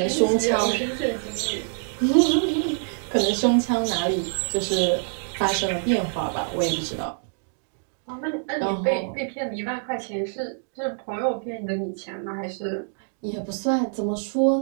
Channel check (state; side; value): silent; left; digital silence